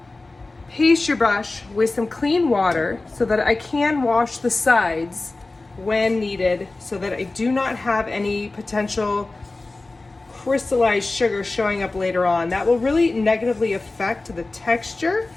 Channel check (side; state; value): right; quieter; 3.3 dB